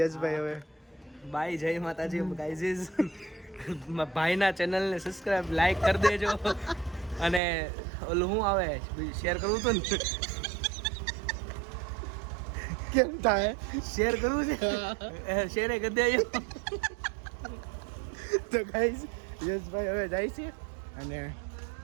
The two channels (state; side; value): drops out; left; at 7.4 s